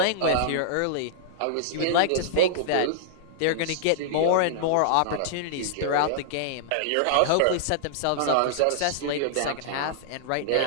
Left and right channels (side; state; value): both; different; correlation -0.01